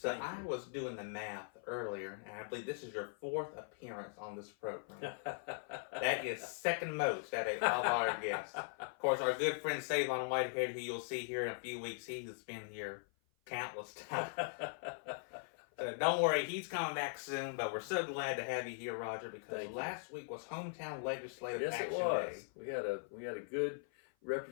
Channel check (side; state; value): right; silent; 51 dB below the other